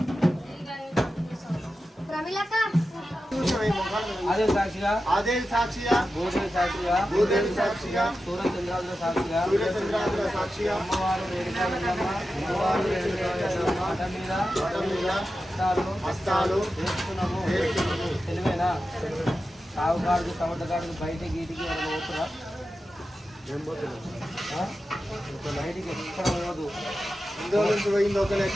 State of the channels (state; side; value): normal; both; correlation 0.92